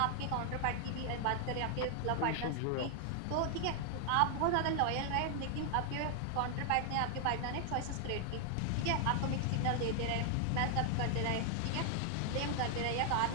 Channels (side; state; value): both; different; correlation 0.00